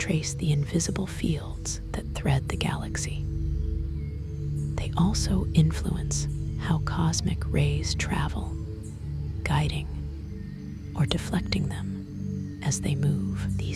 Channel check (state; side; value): identical; both; correlation 1.00